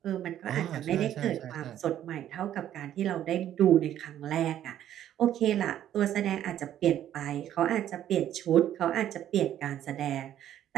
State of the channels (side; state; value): left; quieter; 11.3 dB